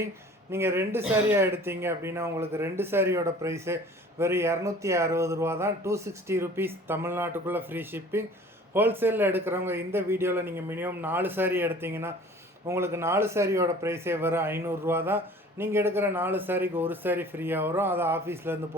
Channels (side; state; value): both; normal; correlation 0.47